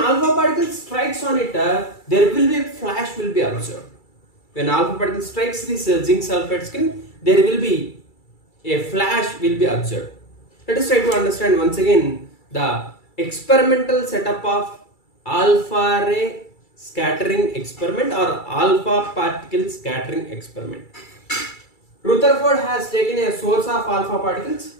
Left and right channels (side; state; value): right; late; 2.3 ms